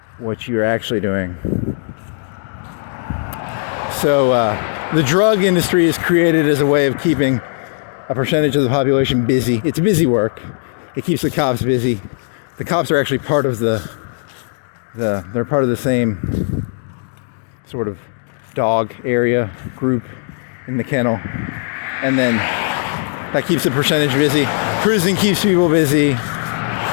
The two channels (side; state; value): right; silent; digital silence